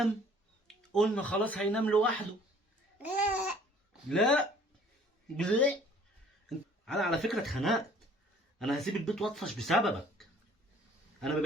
قلنا خلاص هينام لوحده. لا لا، انا على فكره اتخنقت. انا هسيب البيت واطفش بسببك. انا ما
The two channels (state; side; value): normal; both; correlation 0.55